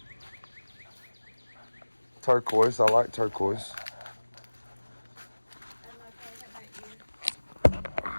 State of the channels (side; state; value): both; inverted; correlation -1.00